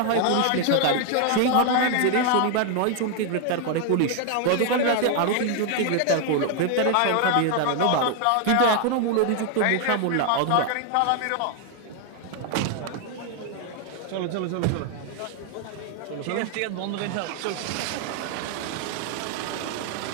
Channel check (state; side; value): different; both; correlation 0.00